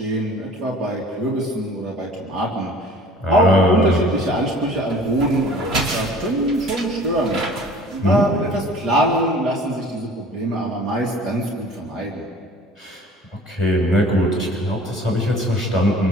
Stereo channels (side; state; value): both; normal; correlation 0.48